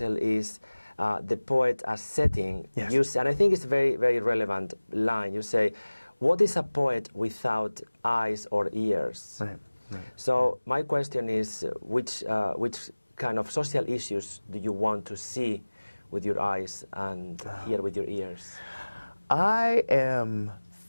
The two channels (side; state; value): both; inverted; correlation -1.00